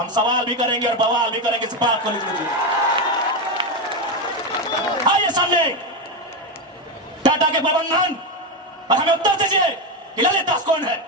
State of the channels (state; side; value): normal; both; correlation 0.11